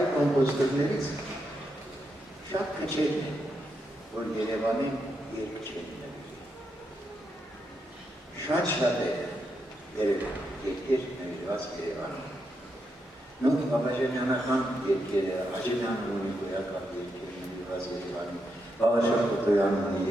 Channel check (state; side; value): normal; both; correlation 0.83